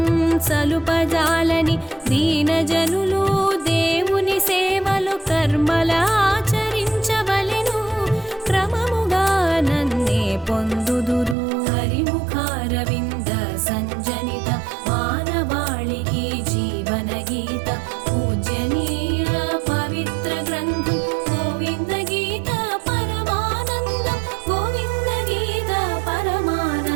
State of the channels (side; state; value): left; drops out; at 11.4 s